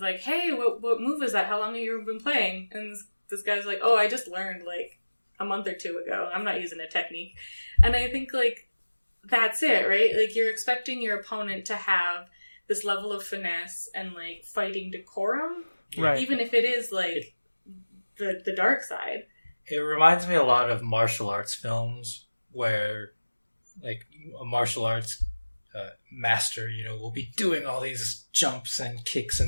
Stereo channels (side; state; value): both; inverted; correlation -1.00